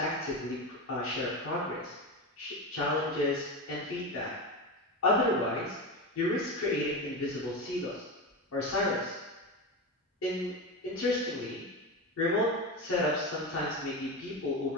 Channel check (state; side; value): normal; both; correlation 0.19